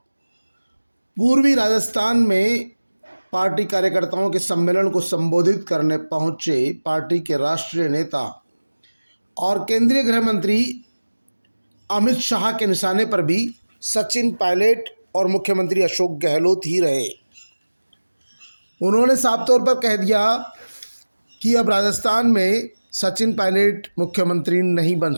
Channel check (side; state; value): both; inverted; correlation -1.00